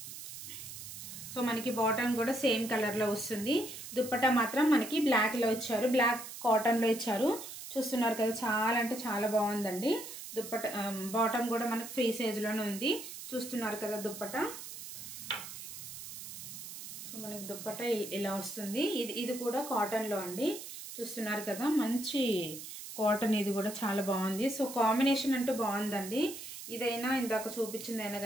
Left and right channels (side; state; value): right; noise; hiss, 11 dB below the sound